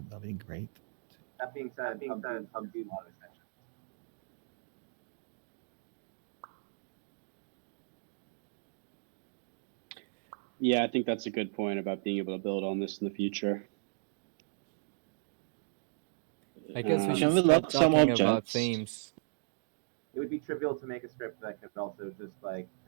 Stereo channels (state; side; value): silent; left; digital silence